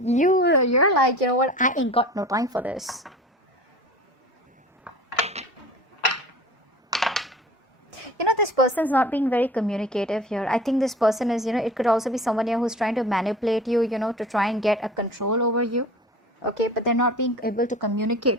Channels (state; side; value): normal; both; correlation 0.40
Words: you're like, you know what, I ain't got no time for this. You know, this person's not being very communicative here. I think this person is, you know, it could also be someone here who's trying to manipulate you, you know, to try and get a control over you. okay, but they're not being able to